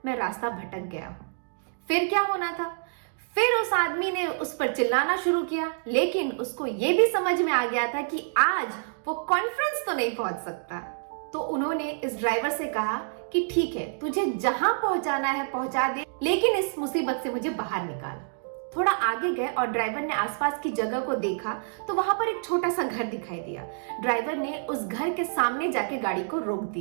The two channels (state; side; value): silent; left; digital silence